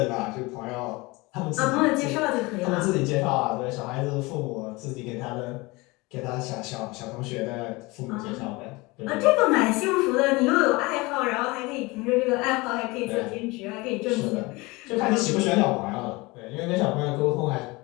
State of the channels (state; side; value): quieter; right; 23.7 dB